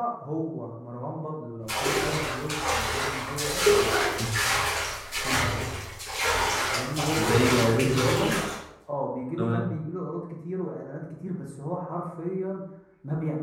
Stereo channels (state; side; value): identical; both; correlation 1.00